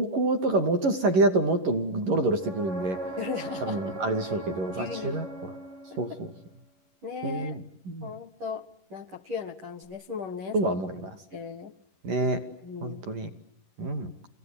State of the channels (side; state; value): left; late; 11 ms